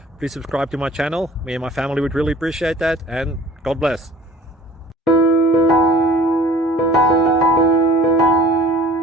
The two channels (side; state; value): both; normal; correlation 0.48